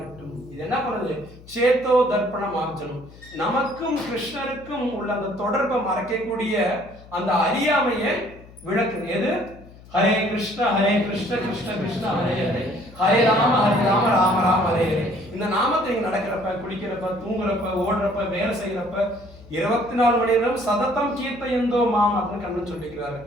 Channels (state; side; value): noise; left; hum, 21 dB below the sound